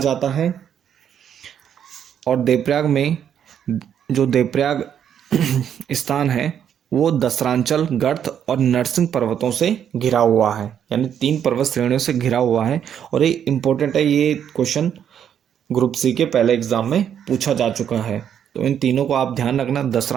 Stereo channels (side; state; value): left; quieter; 9.0 dB